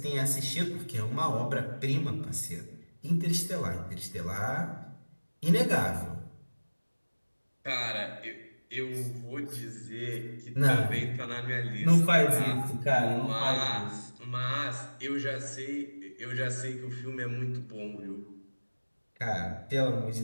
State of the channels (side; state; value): both; inverted; correlation -1.00